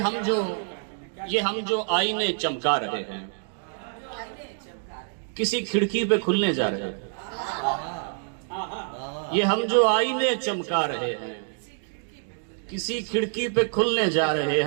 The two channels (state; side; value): silent; left; 58 dB below the other